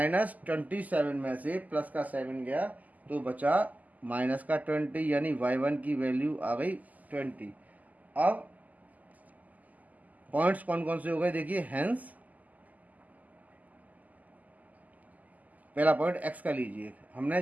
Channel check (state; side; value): late; left; 0.079 ms